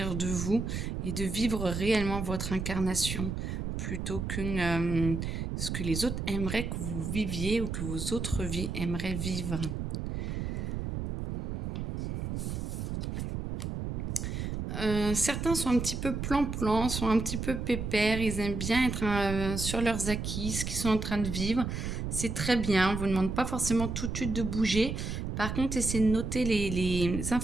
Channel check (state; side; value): noise; right; rumble, 3 dB below the sound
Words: de vous et de vivre réellement votre incarnation plutôt que ce que les autres aimeraient que vous viviez ou que vos autres vies aimeraient vivre. Certains sont un petit peu plan-plan, sont un petit peu pépères, ils aiment bien être sur leurs acquis, ce qu'ils sont en train de vivre. C'est très bien, on ne vous demande pas forcément tout de suite de bouger. Par contre, essayez de noter les